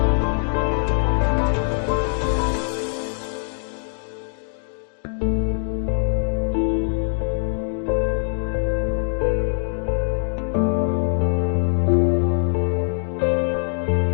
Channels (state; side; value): silent; right; 64 dB below the other